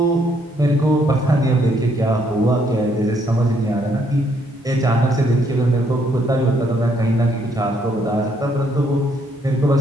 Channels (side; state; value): both; normal; correlation 0.70